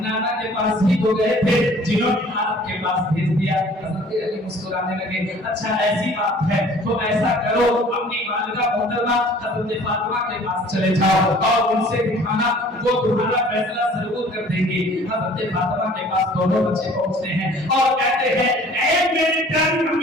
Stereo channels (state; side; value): normal; both; correlation 0.51